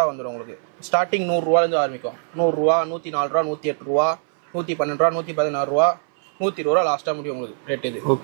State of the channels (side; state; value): left; silent; 61 dB below the other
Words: வந்துடும் உங்களுக்கு. ஸ்டார்டிங் 100 ரூபாலேருந்து ஆரம்பிக்கும். 100 ரூபா, 104 ரூபா, 108 ரூபா, 112 ரூபா, 116 ரூபா, 120 ரூபா லாஸ்ட்டாக முடியும் உங்களுக்கு ரேட். இது